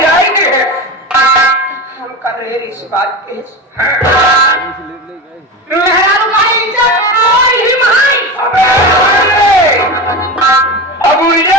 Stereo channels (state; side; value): normal; both; correlation 0.24